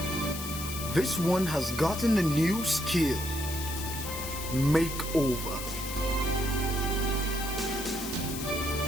This one has gotten a new skill: makeover.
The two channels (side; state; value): left; noise; hiss, 7 dB below the sound